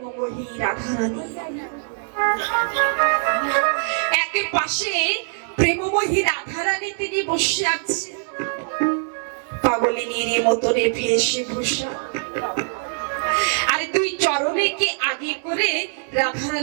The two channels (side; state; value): left; silent; digital silence